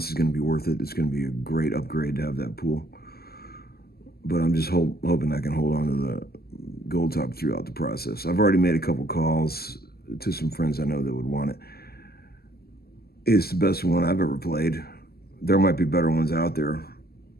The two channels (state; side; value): late; right; 0.45 ms